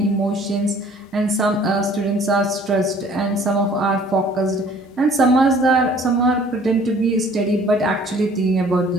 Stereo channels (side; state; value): both; normal; correlation 0.54